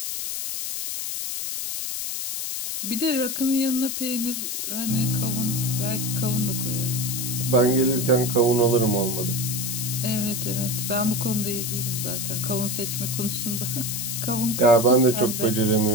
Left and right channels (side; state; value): left; noise; hiss, 3 dB below the sound